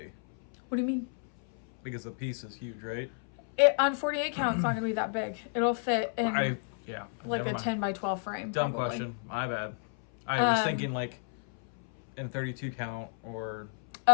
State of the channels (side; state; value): right; silent; 56 dB below the other